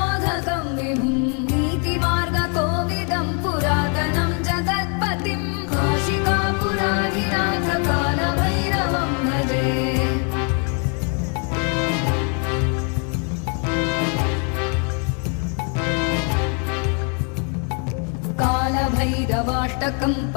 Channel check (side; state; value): right; quieter; 39.3 dB